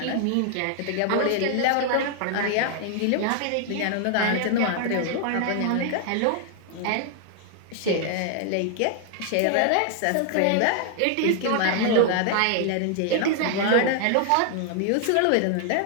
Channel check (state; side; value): different; both; correlation 0.00